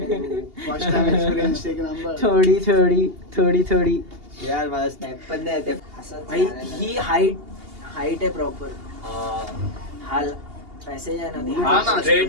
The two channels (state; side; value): late; left; 2.8 ms